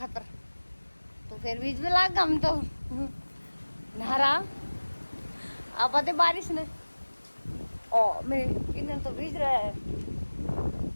तो फिर बीच में लाग हम तो नहरा अब आते बारिश ने। ओ मेरे ईंधन तो भीज रहा है,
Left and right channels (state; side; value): inverted; both; correlation -1.00